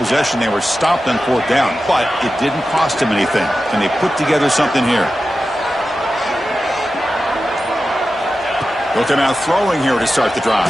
they were stopped on 4th down, but it didn't cost them anything. Can they put together something here? They'll come out throwing here to start the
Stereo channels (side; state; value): both; normal; correlation 0.93